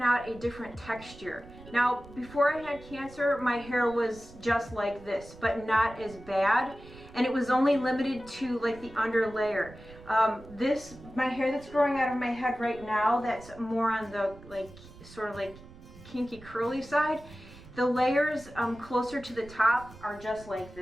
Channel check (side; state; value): right; noise; rumble, 19 dB below the sound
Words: out a different texture. Now, before I had cancer, my hair was just like this, but not as bad. And it was only limited to like the under layer. My hair that's growing out of my head right now, that's more on the sort of like kinky curly side. The layers closer to the top are just like